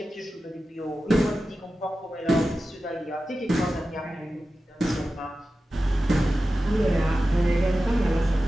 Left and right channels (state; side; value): normal; both; correlation 0.94